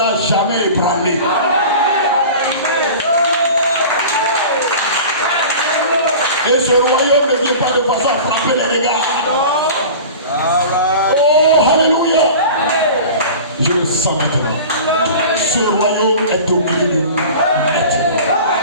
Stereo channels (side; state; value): both; inverted; correlation -0.37